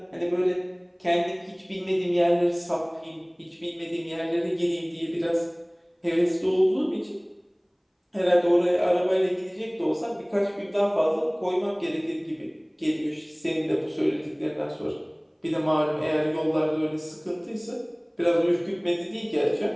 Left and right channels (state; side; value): identical; both; correlation 1.00